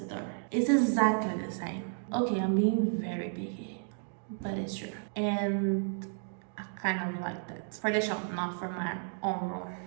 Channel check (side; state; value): left; silent; digital silence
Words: door? It's exactly the same. Okay, I'm being very picky, but it's true. And I kind of like that. For the shop, not for my own room.